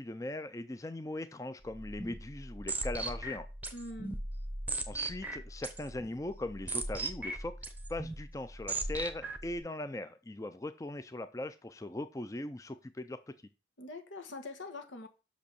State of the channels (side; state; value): both; normal; correlation 0.45